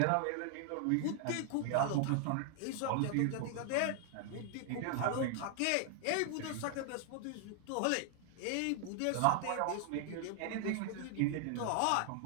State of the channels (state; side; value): different; both; correlation 0.00